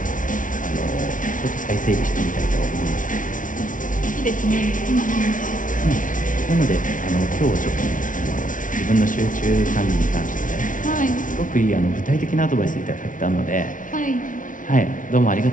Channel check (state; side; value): late; right; 0.38 ms